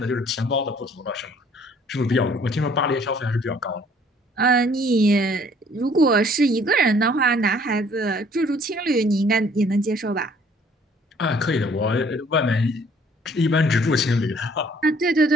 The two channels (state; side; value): normal; both; correlation 0.59